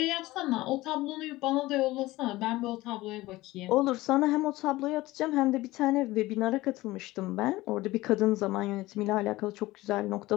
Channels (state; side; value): quieter; right; 18.6 dB